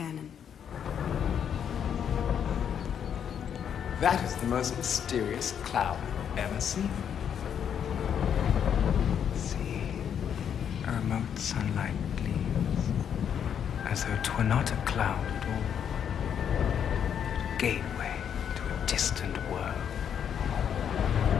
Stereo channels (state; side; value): quieter; right; 8.4 dB